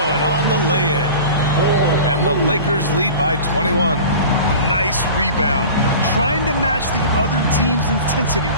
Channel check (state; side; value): inverted; both; correlation -0.38